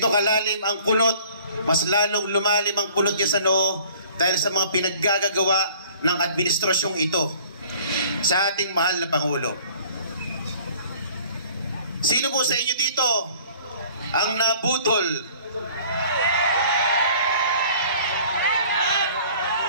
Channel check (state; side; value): inverted; both; correlation -0.51